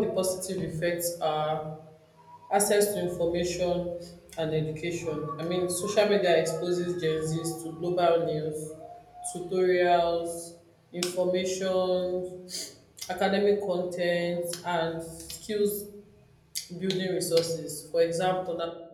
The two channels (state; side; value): identical; both; correlation 1.00